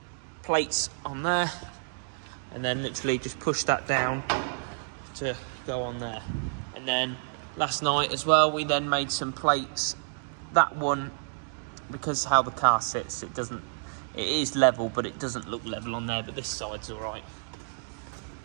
plates on there, and then literally just push that down to go on there. And then last night as well, we then made some plates. That one, because how the car sits, it is level, but it doesn't look level on there, but this side's all right.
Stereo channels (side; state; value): left; silent; digital silence